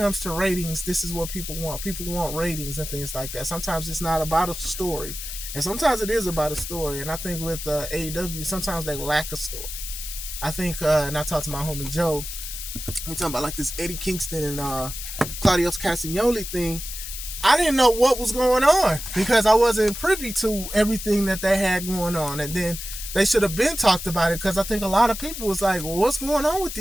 to ratings, this is what people want. People want ratings and things like that. Sometimes it's not about a story, and sometimes it is about a story. And I think with AEW, sometimes they lack a story. I think, and I talked to my homie Joe, we talking about like this Eddie Kingston and Claudio Castagnoli thing. I didn't know what was going on because I wasn't privy to everything that they had going on. And then they should have been talked about it because I think a lot of people was like, well, what's going on with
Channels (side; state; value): left; noise; hiss, 8 dB below the sound